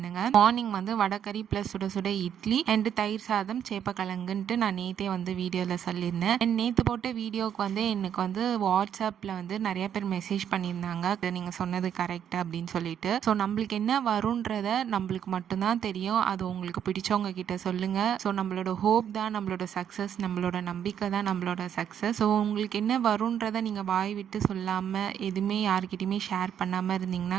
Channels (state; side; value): quieter; left; 9.1 dB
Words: மார்னிங் வந்து வடகறி ப்ளஸ் சுட சுட இட்லி அண்ட் தயிர் சாதம் சேப்பக்கிழங்குன்ட்டு நான் நேற்றே வந்து வீடியோவில் சொல்லியிருந்தேன். அண்ட் நேற்று போட்ட வீடியோவுக்கு வந்து எனக்கு வந்து வாட்ஸ்அப்பில் வந்து நிறைய பேர் மெசேஜ் பண்ணியிருந்தாங்க, நீங்கள் சொன்னது கரெக்ட் அப்படின்னு சொல்லிட்டு. ஸோ நம்மளுக்கு என்ன வரும்ன்றத நம்மளுக்கு மட்டும்தான் தெரியும். அது உங்களுக்கு பிடிச்சவங்க கிட்ட சொல்லுங்க. ஸோ நம்மளோட ஹோப் தான் நம்மளோட சக்ஸஸ், நம்மளோட நம்பிக்கை தான் நம்மளோட சக்ஸஸ். ஸோ உங்களுக்கு என்ன வரும்ன்றத நீங்கள் வாய் விட்டு சொல்லாமல் எதுவுமே யாருக்கிட்டையுமே ஷேர் பண்ணாமல்